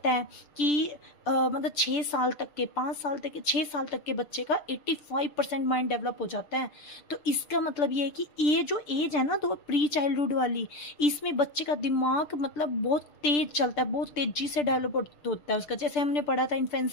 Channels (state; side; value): late; right; 6.8 ms